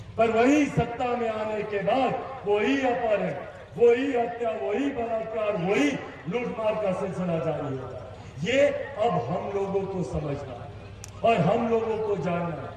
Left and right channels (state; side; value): identical; both; correlation 1.00